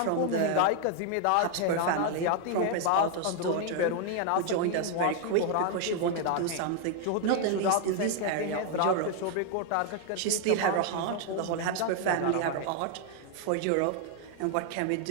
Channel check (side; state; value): both; different; correlation 0.01